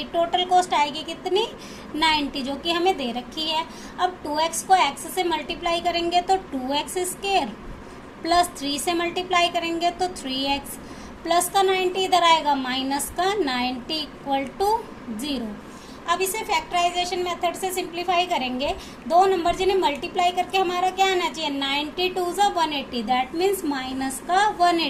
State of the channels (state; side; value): identical; both; correlation 1.00